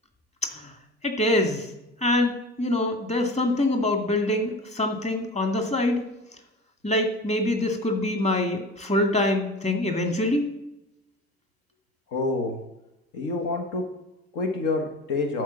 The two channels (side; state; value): both; normal; correlation 0.35